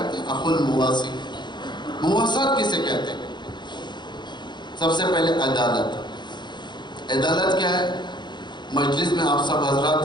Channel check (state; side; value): late; right; 0.22 ms